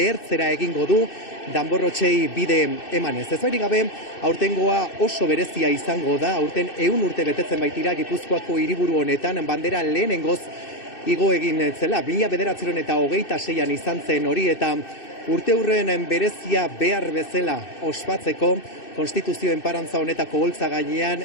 egingo du, danborrotxei bide emanez. Ez bairik gabe, aurtengoa oso berezia izango da, aurten 100 urte betetzen baitira Gipuzkoako hiriburu honetan, bandera lehenengoz igo egin zela, 1926an izan zen hori, eta urte hurren berezia behar bezala ospatzeko, Konstituzioen parantza honetako holtza gainean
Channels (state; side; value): late; right; 2.6 ms